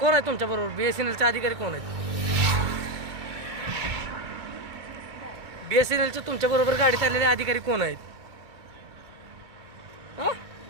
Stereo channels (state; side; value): late; left; 2.4 ms